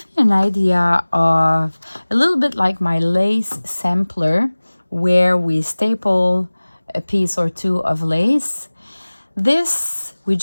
me an idea of a little bit like my lace sampler, where we staple a piece or two of lace. This we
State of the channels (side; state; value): both; inverted; correlation -1.00